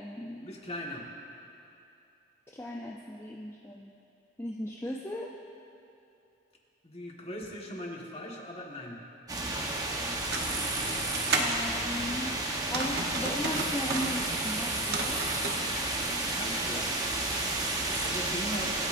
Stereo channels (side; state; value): both; normal; correlation 0.17